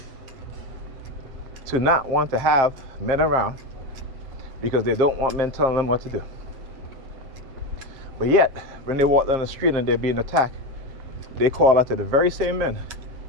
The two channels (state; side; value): late; left; 7.5 ms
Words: to not want to have men around because they don't want men telling them what to do. But yet, when they walk down the street and they're being attacked, they call out to the very same men